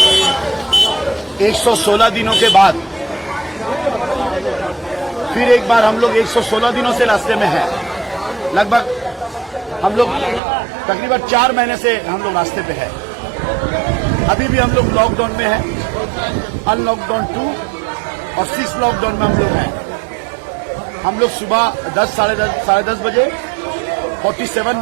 116 दिनों के बाद फिर एक बार हम लोग 116 दिनों से रास्ते में हैं। लगभग हम लोग तकरीबन 4 महीने से हम लोग रास्ते पे हैं। अभी भी हम लोग लॉकडाउन में हैं, अनलॉकडाउन 2 और 6 लॉकडाउन में हम लोग हैं। हम लोग सुबह 10 साढ़े 10 बजे 47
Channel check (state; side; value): drops out; left; at 10.4 s